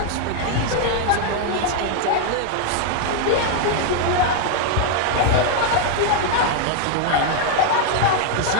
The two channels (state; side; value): different; both; correlation 0.00